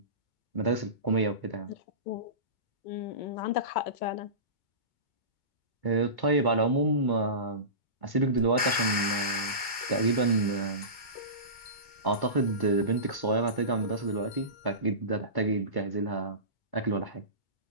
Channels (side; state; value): right; late; 2.2 ms